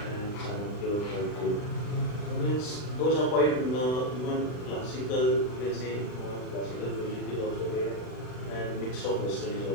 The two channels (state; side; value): late; right; 39 ms